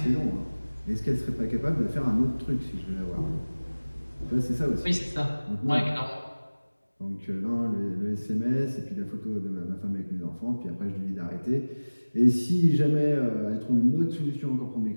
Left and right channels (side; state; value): both; inverted; correlation -1.00